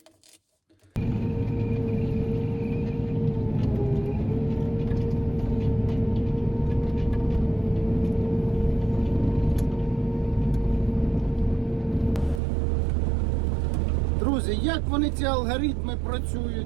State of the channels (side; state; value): left; drops out; at 12.4 s